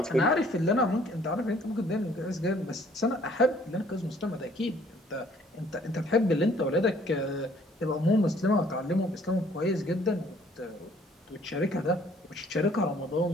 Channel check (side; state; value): both; normal; correlation 0.59